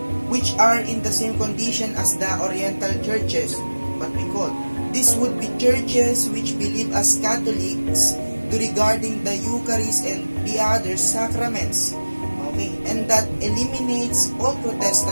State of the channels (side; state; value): both; inverted; correlation -1.00